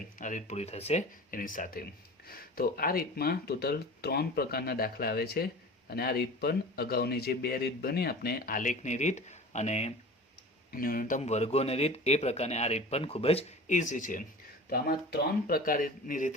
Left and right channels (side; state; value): both; normal; correlation 0.37